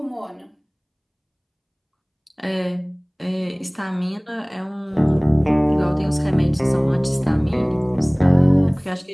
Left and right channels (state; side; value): identical; both; correlation 1.00